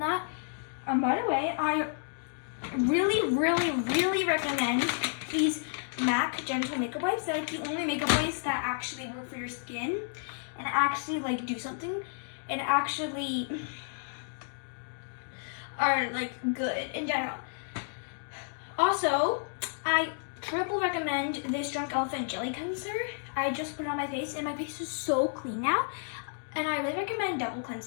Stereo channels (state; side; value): silent; right; digital silence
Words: By the way, I really recommend these MAC Gentle Makeup Wipes. They're like the only makeup wipes that actually work for your skin and actually like do something and actually are like good in general. Also, I triple recommend this Drunk Elephant Jelly Cleanser. I just put it on my face and my face is so clean now. And I really recommend double